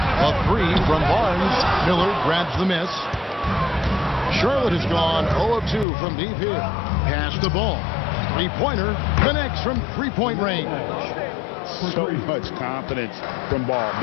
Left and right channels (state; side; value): drops out; right; at 5.9 s